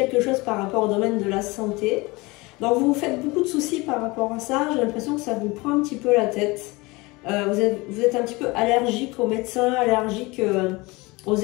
chose par rapport au domaine de la santé. Donc, vous vous faites beaucoup de soucis par rapport à ça. J'ai l'impression que ça vous prend un petit peu la tête. Vous êtes un petit peu allergique aux médecins, allergique... aux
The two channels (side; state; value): right; quieter; 23.8 dB